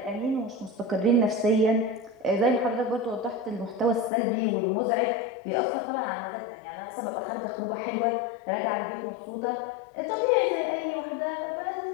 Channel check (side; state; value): right; drops out; at 4.1 s